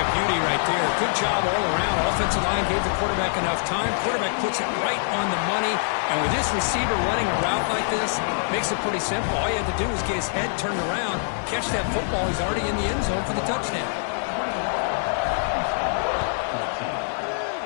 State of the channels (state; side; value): silent; right; digital silence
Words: beauty right there. Good job all around. Offensive line gave the quarterback enough time. Quarterback puts it right on the money. And with this receiver running a route like this, makes it pretty simple. All you have to do is get his head turned around, catch that football. He's already in the end zone for the touchdown.